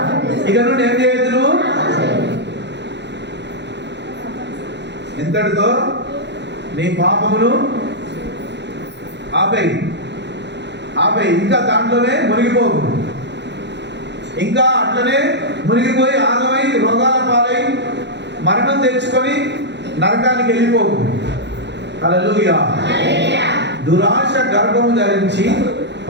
ఇక నుండి, ఏం చేయొద్దు నువ్వు, ఇంతటితో నీ పాపమును ఆపేయి, ఇంకా దాంట్లోనే మునిగిపోకు, ఇంకా అట్లనే మునిగిపోయి ఆగమై రోగాల పాలై మరణం తెచ్చుకొని నరకానికి వెళ్ళిపోకు. హల్లెలూయా. దురాశ గర్భము ధరించి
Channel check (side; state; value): left; late; 0.51 ms